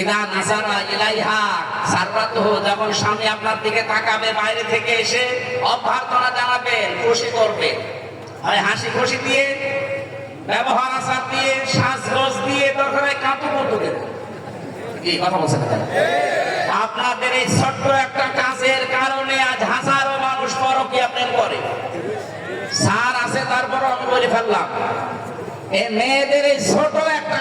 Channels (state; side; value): identical; both; correlation 1.00